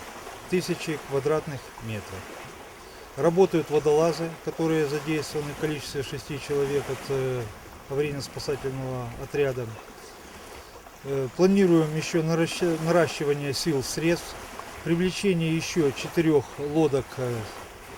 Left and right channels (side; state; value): both; identical; correlation 1.00